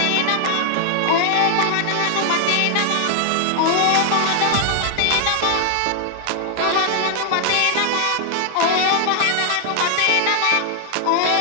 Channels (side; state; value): both; different; correlation 0.00